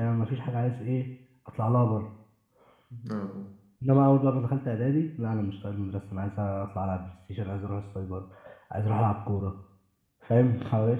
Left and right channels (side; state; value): both; identical; correlation 1.00